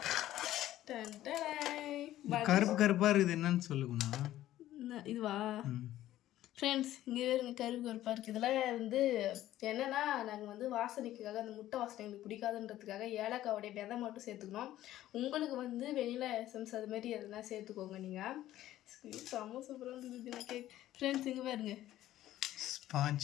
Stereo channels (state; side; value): quieter; right; 13.8 dB